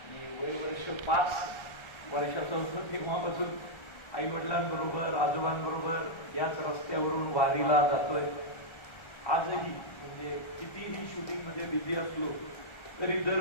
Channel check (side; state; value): right; late; 1.3 ms